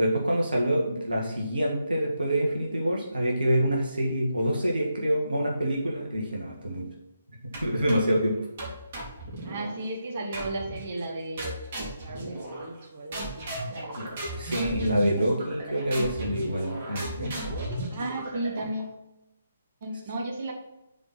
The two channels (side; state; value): both; inverted; correlation -0.83